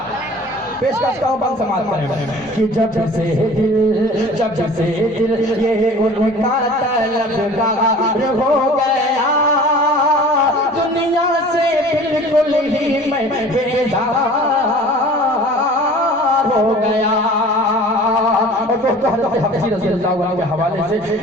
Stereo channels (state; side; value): normal; both; correlation 0.45